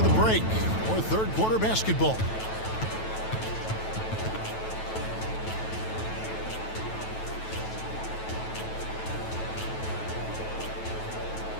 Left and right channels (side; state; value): right; late; 9.2 ms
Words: the break for third quarter basketball.